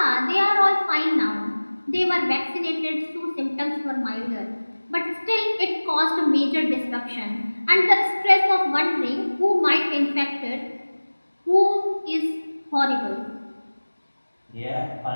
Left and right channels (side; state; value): both; inverted; correlation -1.00